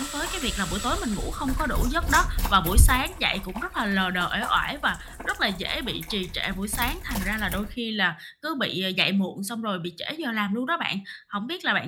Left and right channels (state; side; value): identical; both; correlation 1.00